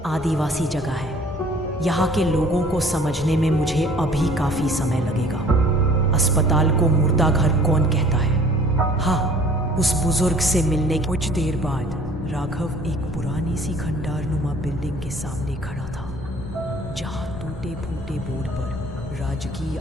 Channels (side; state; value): both; normal; correlation 0.52